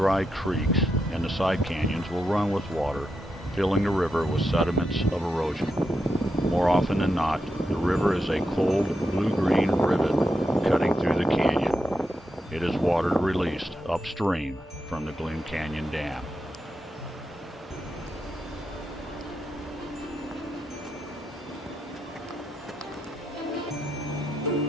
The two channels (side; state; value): both; normal; correlation 0.85